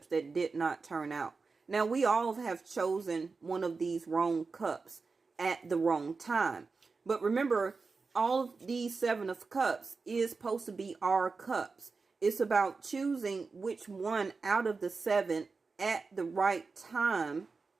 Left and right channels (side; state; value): left; quieter; 4.4 dB